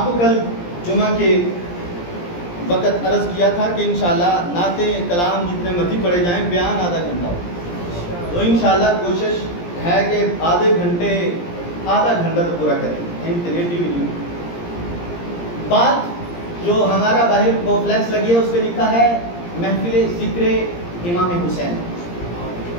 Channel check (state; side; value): late; right; 17 ms